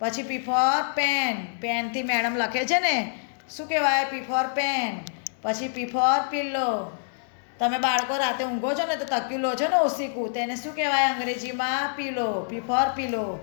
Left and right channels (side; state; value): right; silent; digital silence